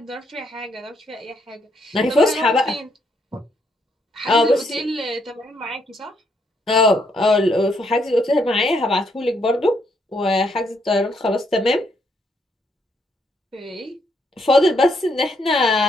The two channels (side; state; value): both; normal; correlation 0.74